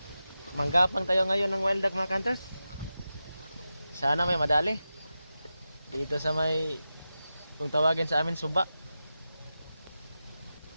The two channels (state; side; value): inverted; both; correlation -0.92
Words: Manggapang tayo ngayon ng wild duck mga ka-hunters. Sana may madali. Dito sa may, kung tawagin sa amin, suba.